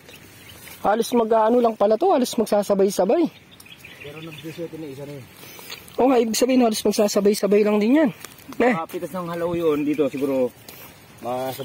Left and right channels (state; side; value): identical; both; correlation 1.00